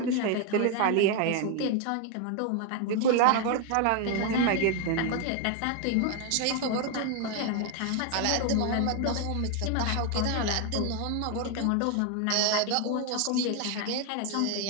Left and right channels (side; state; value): both; different; correlation 0.01